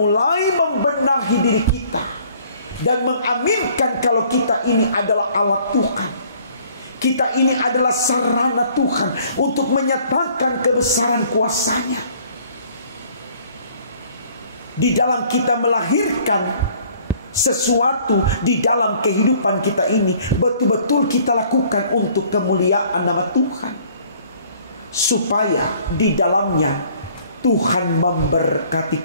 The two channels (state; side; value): inverted; both; correlation -0.57